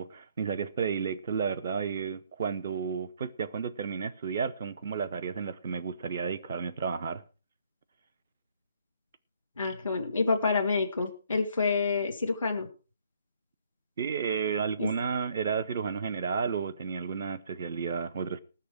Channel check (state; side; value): inverted; both; correlation -0.65